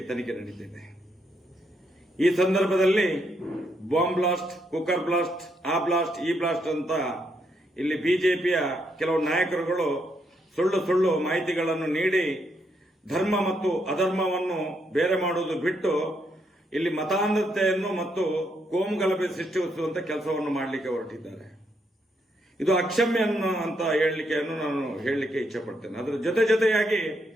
ತನಿಖೆ ನಡೀತಿದೆ. ಈ ಸಂದರ್ಭದಲ್ಲಿ ಬಾಂಬ್ ಬ್ಲಾಸ್ಟ್, ಕುಕ್ಕರ್ ಬ್ಲಾಸ್ಟ್, ಆ ಬ್ಲಾಸ್ಟ್, ಈ ಬ್ಲಾಸ್ಟ್ ಅಂತ ಇಲ್ಲಿ ಬಿಜೆಪಿಯ ಕೆಲವು ನಾಯಕರುಗಳು ಸುಳ್ಳು ಮಾಹಿತಿಗಳನ್ನು ನೀಡಿ ಧರ್ಮ ಮತ್ತು ಅಧರ್ಮವನ್ನು ಬೇರೆ ಮಾಡುವುದು ಬಿಟ್ಟು ಇಲ್ಲಿ ಮತಾಂಧತೆಯನ್ನು ಮತ್ತು ಕೋಮುಗಲಭೆ ಸೃಷ್ಟಿಸುವಂತ ಕೆಲಸವನ್ನು ಮಾಡಲಿಕ್ಕೆ ಹೊರಟಿದ್ದಾರೆ. ಇದು ಅಕ್ಷಮ್ಯ ಅಂತ ನಾನು ಹೇಳಲಿಕ್ಕೆ ಇಚ್ಛೆ ಪಡ್ತೇನೆ. ಅದರ ಜೊತೆಯಾಗಿ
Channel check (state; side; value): normal; both; correlation 0.77